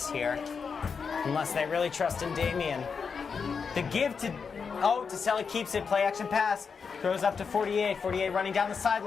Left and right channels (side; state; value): right; quieter; 5.7 dB